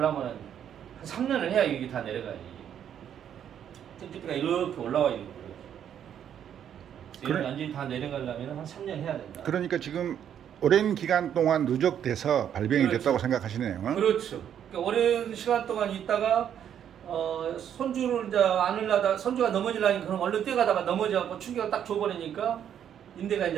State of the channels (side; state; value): left; quieter; 9.3 dB